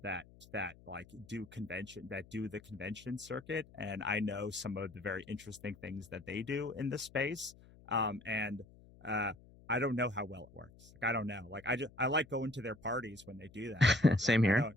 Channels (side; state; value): left; noise; hum, 23 dB below the sound